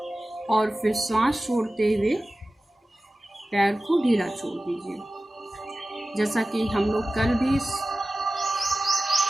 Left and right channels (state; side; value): normal; both; correlation 0.95